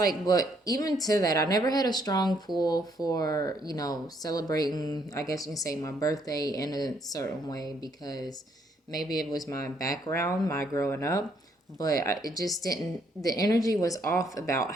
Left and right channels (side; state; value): both; normal; correlation 0.70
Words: but even to that, I never had a strong pull for, celebrating, I guess you can say, my birthday in a certain way, because maybe it was my background, my growing up, but it just didn't, the energy was off about